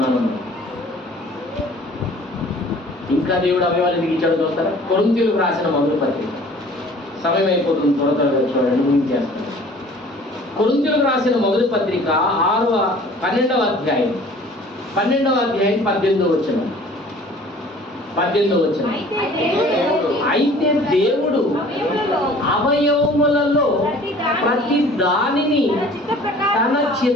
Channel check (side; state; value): both; normal; correlation 0.49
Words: ఇంకా దేవుడు అవయవాలు ఎందుకు ఇచ్చాడో చూస్తారా? కొరింథీయులకు రాసిన మొదటి పత్రిక. సమయం అయిపోతుంది, త్వరగా చూడండి, ముగించేస్తాను. కొరింథీయులకు రాసిన మొదటి పత్రిక 12వ అధ్యాయం 18వ వచనం. అయితే దేవుడు అవయవములలో ప్రతి దానిని తన